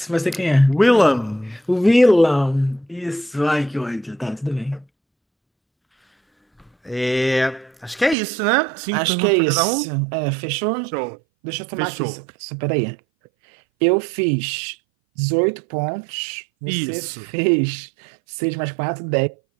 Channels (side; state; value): left; drops out; at 8.2 s